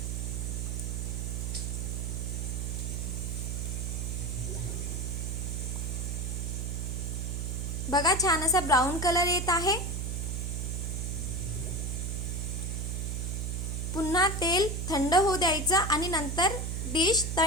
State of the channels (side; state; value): right; noise; hum, 2 dB below the sound